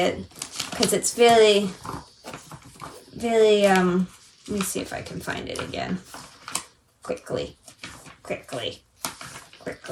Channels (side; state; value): both; identical; correlation 1.00